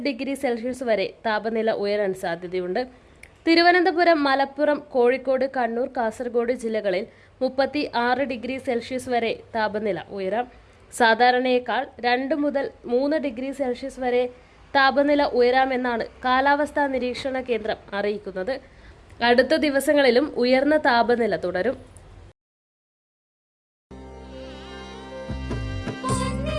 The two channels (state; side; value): identical; both; correlation 1.00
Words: ഡിഗ്രി സെൽഷ്യസ് വരെ താപനില ഉയരാൻ സാധ്യതയുണ്ട്. തിരുവനന്തപുരം, മലപ്പുറം, കോഴിക്കോട്, കണ്ണൂർ, കാസർഗോഡ് ജില്ലകളിൽ 36 ഡിഗ്രി സെൽഷ്യസ് വരെ താപനില ഉയരാം. സാധാരണയേക്കാൾ 2 മുതൽ 3 ഡിഗ്രി സെൽഷ്യസ് വരെ താപനില ഉയരാമെന്നാണ് കാലാവസ്ഥാ നിരീക്ഷണ കേന്ദ്രം അറിയിക്കുന്നത്. അടുത്ത ദിവസങ്ങളിലും ഉയർന്ന താപനില തുടരും.